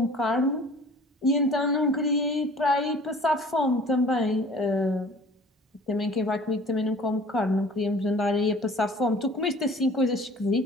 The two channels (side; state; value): both; normal; correlation 0.48